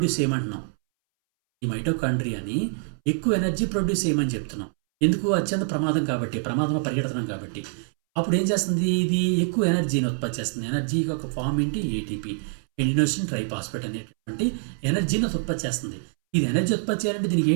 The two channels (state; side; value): silent; left; 62 dB below the other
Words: చేయమంటున్నాం. ఈ మైటోకాండ్రియాని ఎక్కువ ఎనర్జీ ప్రొడ్యూస్ చేయమని చెప్తున్నాం. ఎందుకు, అత్యంత ప్రమాదం కాబట్టి, ప్రమాదంలో పరిగెడుతున్నాం కాబట్టి. అప్పుడు ఏం చేస్తుంది, ఇది ఎక్కువ ఎనర్జీని ఉత్పత్తి చేస్తుంది. ఎనర్జీ ఒక ఫామ్ ఏంటి, ఏటీపీ, ఎడినోసిన్ ట్రైఫాస్ఫేట్ అనేటువంటి ఎనర్జీని ఉత్పత్తి చేస్తుంది. ఇది ఎనర్జీ ఉత్పత్తి చేయాలంటే దీనికి